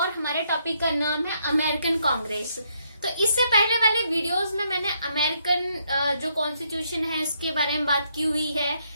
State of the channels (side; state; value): both; inverted; correlation -0.74